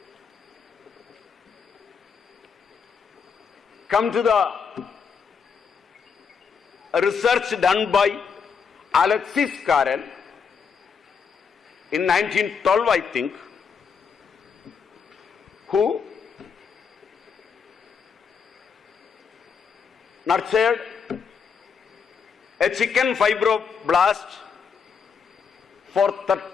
come to the research done by Alexis Carrel in 1912, I think, who nurtured a chicken fibroblast for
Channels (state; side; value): quieter; right; 6.2 dB